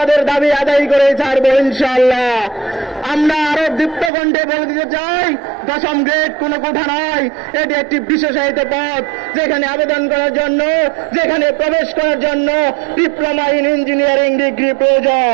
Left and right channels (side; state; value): left; drops out; at 4.1 s